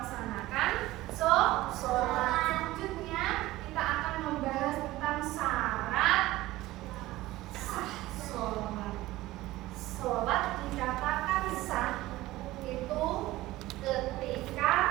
sholat. Selanjutnya kita akan membahas tentang syarat sah sholat. Sholat dikatakan sah itu ketika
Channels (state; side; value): quieter; left; 17.4 dB